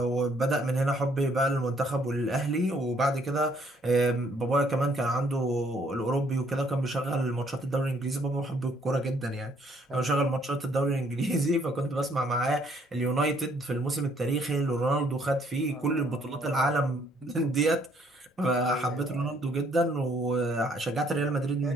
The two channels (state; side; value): normal; both; correlation 0.65